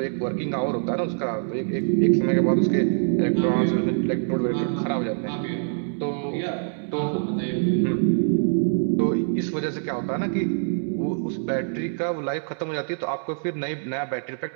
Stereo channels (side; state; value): left; silent; digital silence